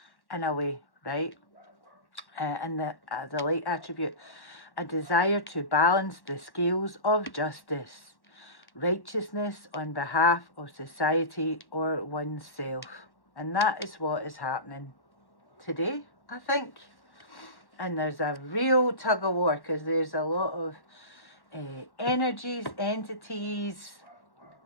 in a way, right? And the light attribute, a desire to balance the scales of justice, righteousness on behalf of society or oneself. And that is what is happening today, I think. And there's a real tug of war, because there's a lot of energies, entities,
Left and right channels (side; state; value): right; late; 1.1 ms